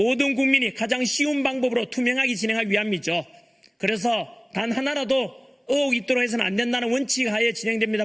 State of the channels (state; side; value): identical; both; correlation 1.00